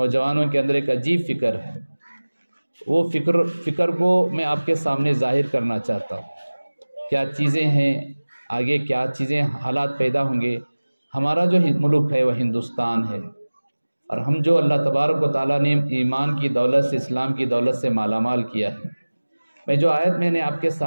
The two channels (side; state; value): both; inverted; correlation -1.00